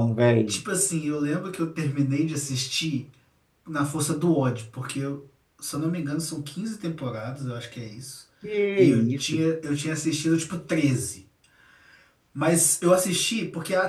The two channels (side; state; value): both; identical; correlation 1.00